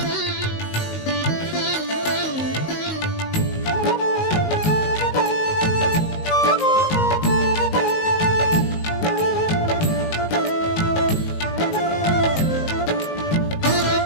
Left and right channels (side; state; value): right; late; 19 ms